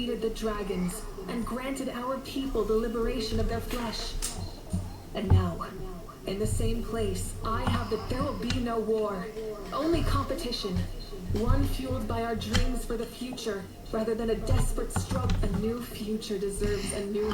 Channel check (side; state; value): both; identical; correlation 1.00